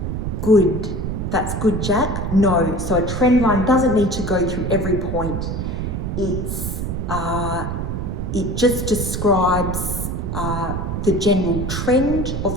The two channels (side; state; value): right; noise; rumble, 3 dB below the sound